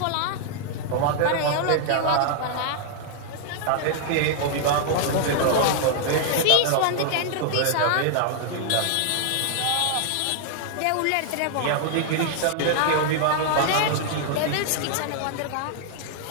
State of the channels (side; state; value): both; different; correlation -0.01